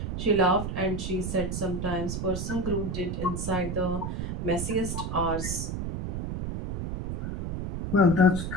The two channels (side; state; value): right; noise; rumble, 4 dB below the sound